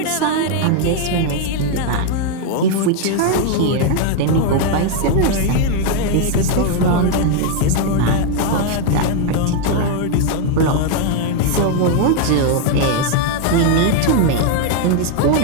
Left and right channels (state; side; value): different; both; correlation 0.00